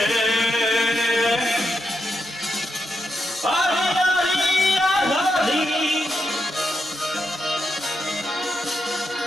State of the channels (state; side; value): normal; both; correlation 0.84